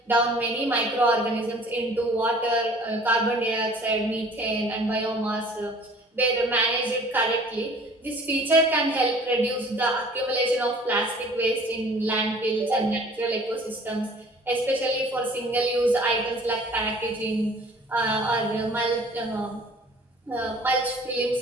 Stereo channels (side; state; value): both; normal; correlation 0.51